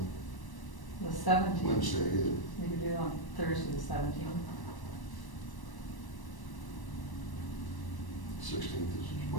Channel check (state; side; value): late; right; 1.1 ms